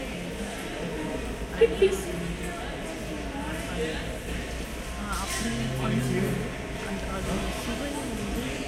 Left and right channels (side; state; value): both; identical; correlation 1.00